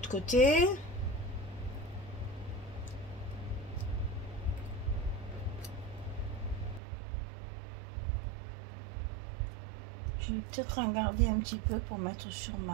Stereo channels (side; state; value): left; drops out; at 6.8 s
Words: côté. Je vais peut-être en garder un petit peu pour mettre sur